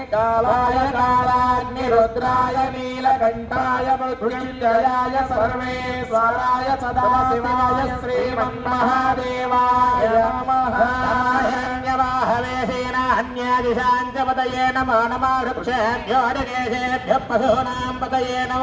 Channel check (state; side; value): identical; both; correlation 1.00